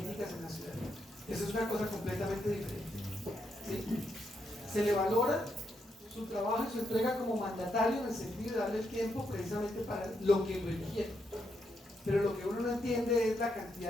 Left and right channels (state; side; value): normal; both; correlation 0.80